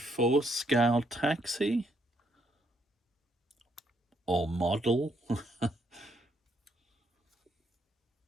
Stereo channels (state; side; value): normal; both; correlation 0.73